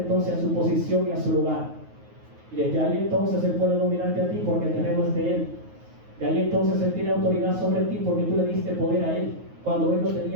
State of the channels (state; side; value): late; left; 9.4 ms